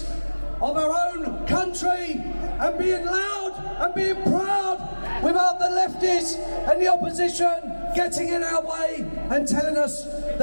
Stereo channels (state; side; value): inverted; both; correlation -1.00